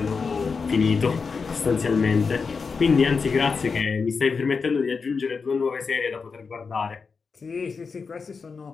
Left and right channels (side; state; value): right; quieter; 5.1 dB